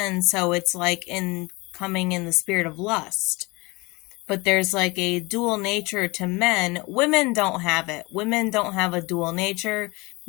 so it's like in coming in the spirit of lust. But there's like a dual nature to men. Women don't have it. Women don't have a dual nature.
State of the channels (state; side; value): quieter; right; 25.0 dB